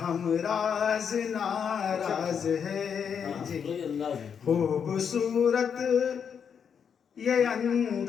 हमराज नाराज है। जी खूबसूरत ये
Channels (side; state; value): right; quieter; 7.2 dB